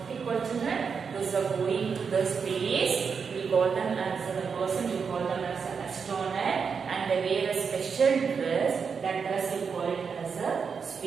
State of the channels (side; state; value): left; quieter; 5.9 dB